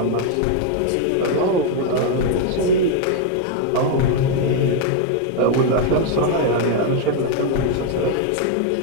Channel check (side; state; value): both; different; correlation 0.00